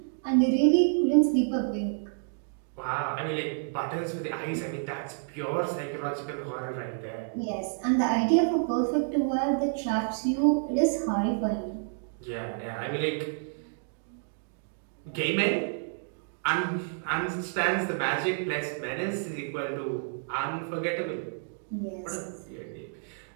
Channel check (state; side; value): silent; left; digital silence